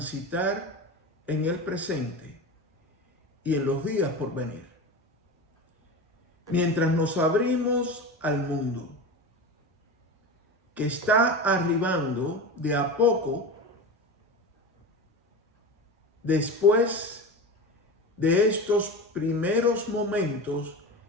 en el presente y en los días por venir. Mientras nos abrimos al mundo, que está arribando de a poco después de estos primeros momentos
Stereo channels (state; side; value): normal; both; correlation 0.27